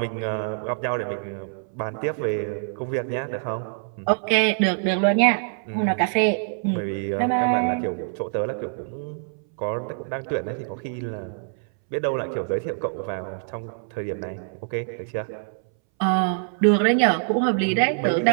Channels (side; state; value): left; silent; 62 dB below the other